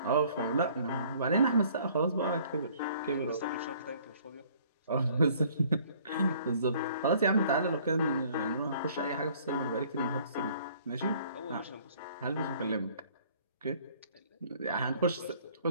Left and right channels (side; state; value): both; inverted; correlation -0.57